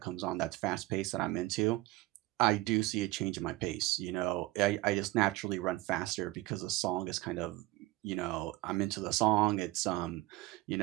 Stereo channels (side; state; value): left; quieter; 19.3 dB